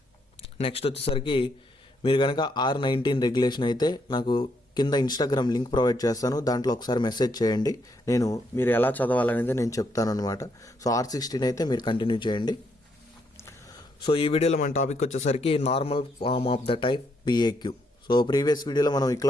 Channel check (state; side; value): normal; both; correlation 0.75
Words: నెక్స్ట్ వచ్చేసరికి మీరు కనుక R19 రెగ్యులేషన్ అయితే నాకు కింద ఇన్స్టాగ్రామ్ లింక్ ప్రొవైడ్ చేస్తాను, దాంట్లో ఒకసారి మెసేజ్ చేయండి. మీరు ఎలా చదవాలనేది నేను చెప్తాను అనమాట. సో R16 అయితే మీరు కంటిన్యూ చేయండి. సో ఈ వీడియోలో మన టాపిక్ వచ్చేసరికి normal form of the type PAQ. So previous వీడియోలో మనం